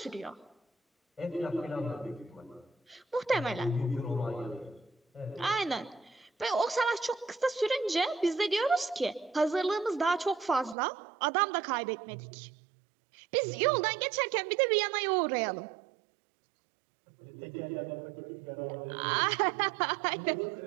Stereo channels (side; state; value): left; drops out; at 10.8 s